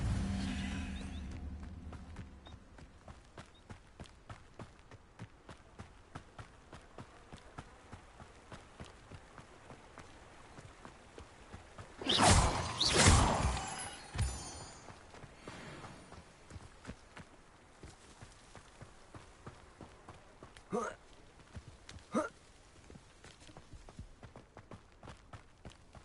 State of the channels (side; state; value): both; identical; correlation 1.00